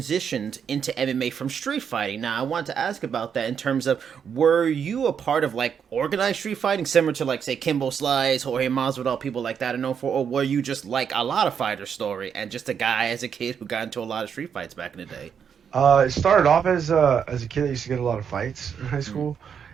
into MMA from street fighting. Now, I want to ask about that in terms of, were you a part of like organized street fighting, similar to like, say, Kimbo Slice, Jorge Masvidal, people like that are known for, or were you just like a lot of fighter story and just a guy as a kid who got into a lot of street fights back in the day? It started off as a kid that used to get a lot of fights in high school,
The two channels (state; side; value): quieter; left; 7.4 dB